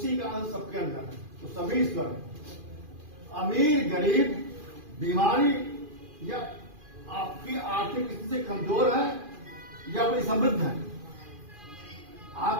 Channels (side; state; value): left; late; 2.4 ms